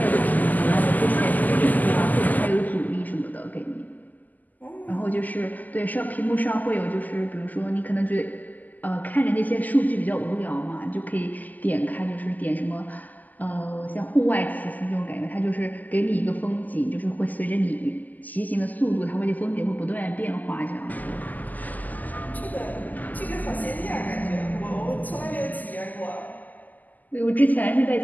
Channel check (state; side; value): late; right; 0.082 ms